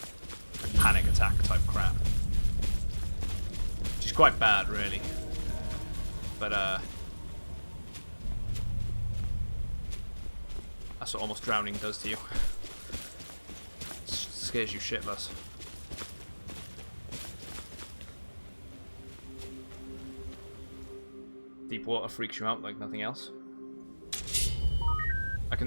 Like panic attack type crap. Which is quite bad, really. But that's what almost drowning does to you. It scares you shitless. Deep water freaks you out like nothing else. I can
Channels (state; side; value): inverted; both; correlation -1.00